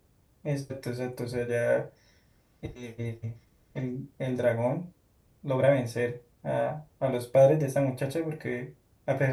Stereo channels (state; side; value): identical; both; correlation 1.00